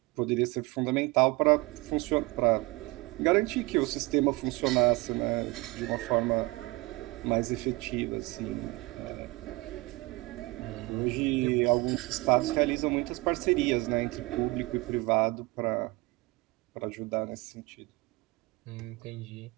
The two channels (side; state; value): left; quieter; 23.5 dB